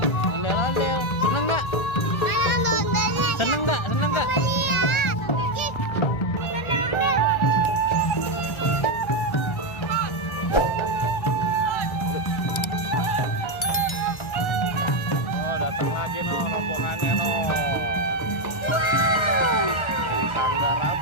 Ondel-ondel. Seneng nggak? Seneng nggak? Seneng nggak? Oh, datang lagi no rombongannya no. Wow. Sanggar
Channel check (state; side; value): late; right; 1.3 ms